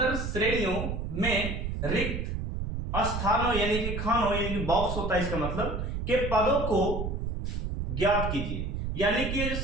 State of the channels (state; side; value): noise; right; rumble, 3 dB below the sound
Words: श्रेणियों में रिक्त स्थानों यानी कि खानों यानी कि बॉक्स होता है, इसका मतलब के पदों को ज्ञात कीजिए। यानी कि ये जो